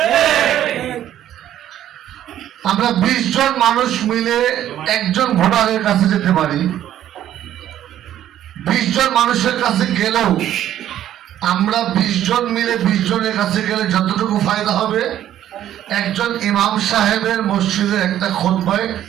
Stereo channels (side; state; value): left; quieter; 11.7 dB